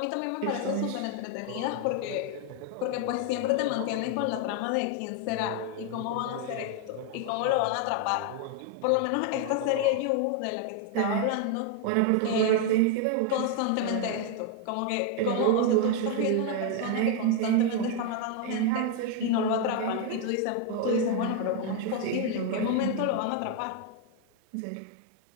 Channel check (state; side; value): different; both; correlation 0.01